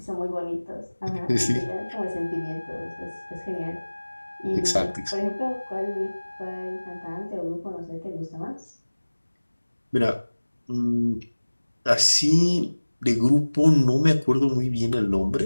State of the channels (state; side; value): inverted; both; correlation -1.00